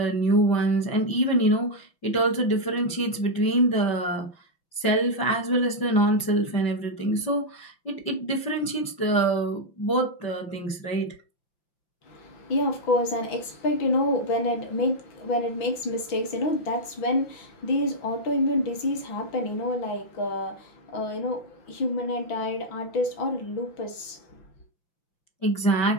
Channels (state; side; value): late; right; 5.8 ms